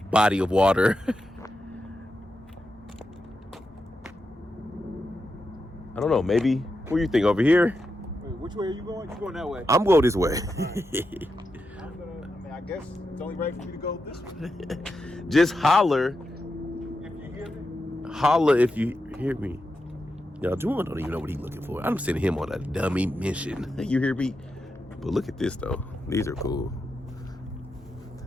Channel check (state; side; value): normal; both; correlation 0.87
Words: body of water. I don't know, maybe, what do you think, over here? Wait, which way are you going? You're going that way. I'm going this way. I guess it's only right for me to go this way. Just holler. If you hear me. Holler if you hear me. Y'all, Juwan don't even know what he's looking for. I'm sending him on a dummy mission. You hear me? But look at this, though. These are cool.